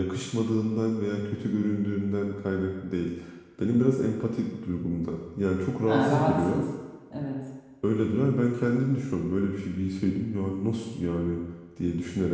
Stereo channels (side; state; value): both; identical; correlation 1.00